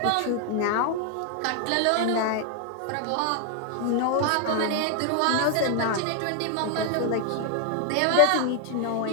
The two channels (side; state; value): both; different; correlation 0.00